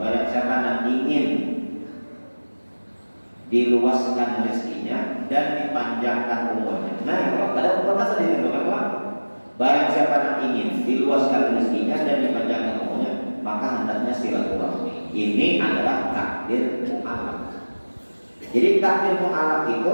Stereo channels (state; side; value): inverted; both; correlation -1.00